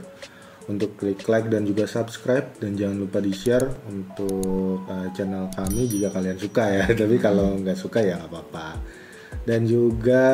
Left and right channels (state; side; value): identical; both; correlation 1.00